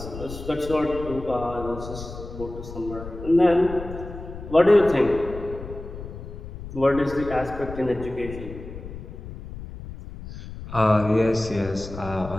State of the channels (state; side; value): noise; left; rumble, 12 dB below the sound